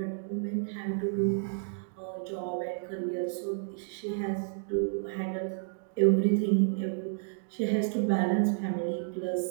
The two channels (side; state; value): left; silent; digital silence